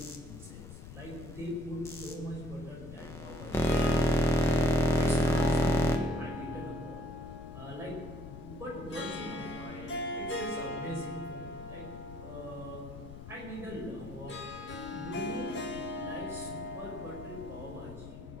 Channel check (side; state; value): left; noise; rumble, 13 dB below the sound